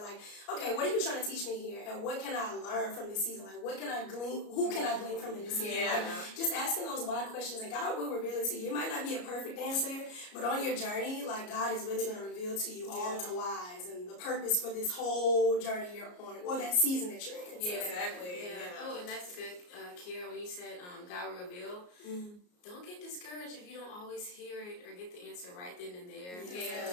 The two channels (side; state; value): right; late; 33 ms